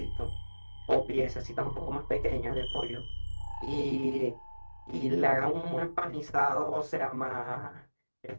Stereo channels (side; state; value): both; inverted; correlation -1.00